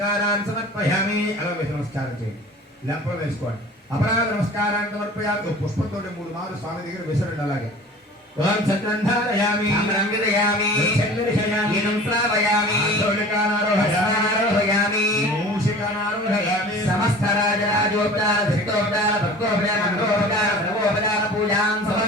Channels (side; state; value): both; normal; correlation 0.42